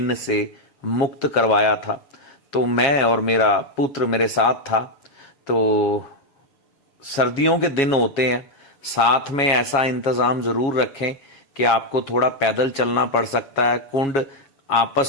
से मुक्त करवाया था। तो मैं और मेरा पुत्र मेरे साथ था। तो सर्दियों के दिन होते हैं, साथ में ऐसा इंतजाम जरूर रखें कि आपको थोड़ा पैदल चलना पड़ सकता है। कुंड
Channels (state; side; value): late; right; 7.3 ms